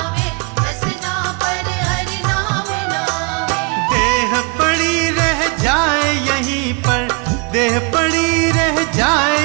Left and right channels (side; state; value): left; quieter; 32.5 dB